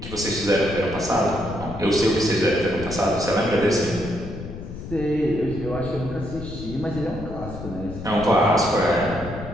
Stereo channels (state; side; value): noise; left; rumble, 10 dB below the sound